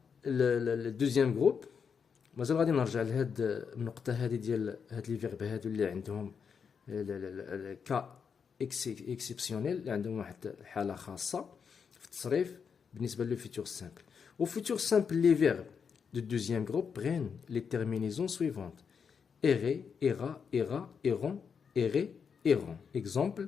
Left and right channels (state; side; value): quieter; right; 6.4 dB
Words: الدوزيام جروب مازال غادي نرجع لهاد النقطة هذه ديال هاد لي فيرب هادو اللي عندهم كا اكسبسيونيل اللي عندهم واحد الحالة خاصة في التصريف بالنسبة لو فيتور سامبل. Au futur simple, les verbes du deuxième groupe prennent les terminaisons suivantes. Errer, ira, ira, erront, errer, erront. Exemple,